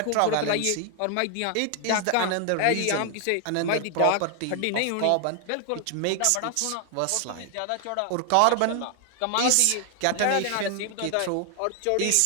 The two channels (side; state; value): both; different; correlation 0.00